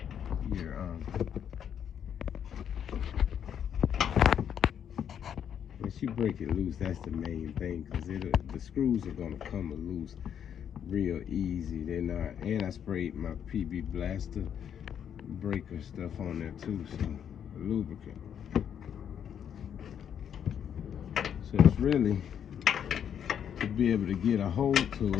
once you break it loose, that's the main thing, because the screws are gonna come loose real easy. They're not, and I sprayed my PB Blaster breaker stuff on there too, so lubricant. So it's really to be able to get a hold to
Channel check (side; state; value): right; quieter; 8.7 dB